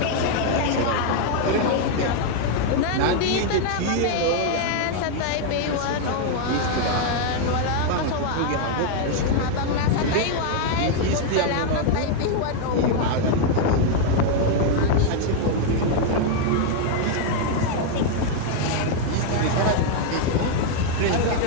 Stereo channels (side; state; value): both; different; correlation 0.00